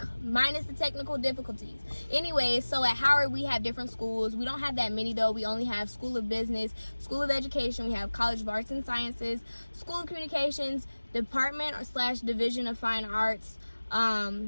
minus the technical difficulties. Anyway, so at Howard we have different schools. We don't have that many though. We only have School of Business, School of Education. We have College of Arts and Sciences, School of Communications, Department / Division of Fine Arts,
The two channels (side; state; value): both; inverted; correlation -1.00